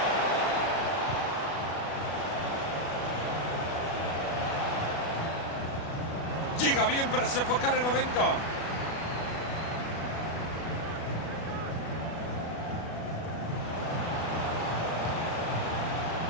Llega bien para sofocar el momento.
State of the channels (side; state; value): right; late; 36 ms